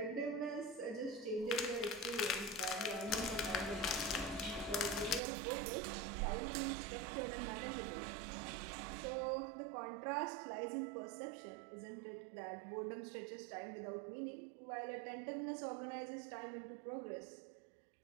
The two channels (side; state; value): left; drops out; at 5.2 s